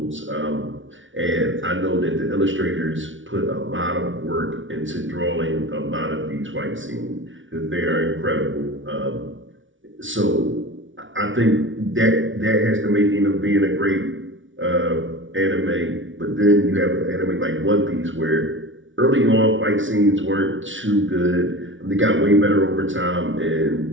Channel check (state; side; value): late; left; 0.56 ms